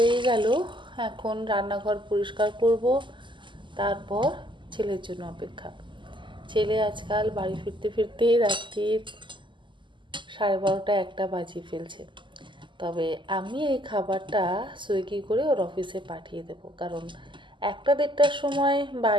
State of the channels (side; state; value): left; late; 0.24 ms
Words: গেল। এখন রান্নাঘর পরিষ্কার করব, তারপর ছেলের জন্য অপেক্ষা। ছেলে আজকাল বাড়ি ফিরতে ফিরতে রাত্রির 12:30 একটা বাজিয়ে ফেলছে। তবে আমি এই খাবারটা সুইগি করে ওর অফিসে পাঠিয়ে দেব, কারণ 1-1:30টার সময়